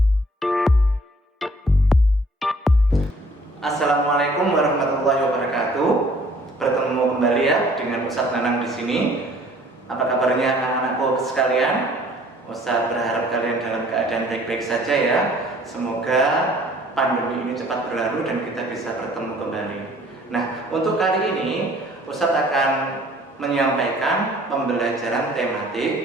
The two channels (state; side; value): normal; both; correlation 0.56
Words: warahmatullahi wabarakatuh. Bertemu kembali ya dengan Ustadz Nanang di sini. Apa kabarnya anak-anakku sekalian? Ustadz berharap kalian dalam keadaan baik-baik saja ya. Semoga pandemi ini cepat berlalu dan kita bisa bertemu kembali. Nah, untuk kali ini Ustadz akan menyampaikan pembelajaran